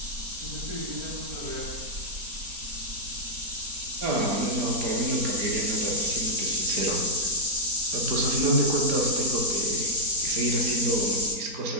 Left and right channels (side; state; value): left; late; 4.4 ms